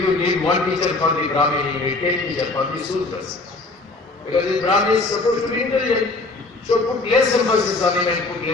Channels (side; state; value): right; quieter; 3.3 dB